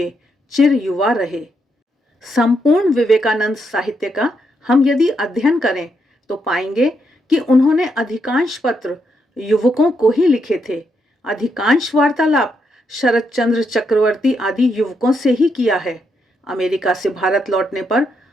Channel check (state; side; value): normal; both; correlation 0.79